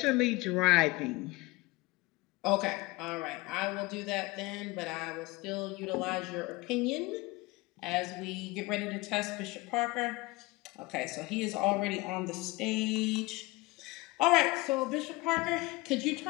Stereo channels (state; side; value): quieter; right; 22.0 dB